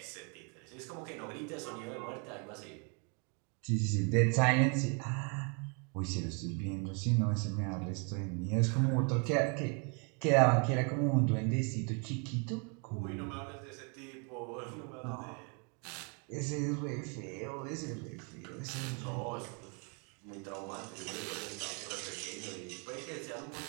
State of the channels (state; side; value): quieter; left; 36.0 dB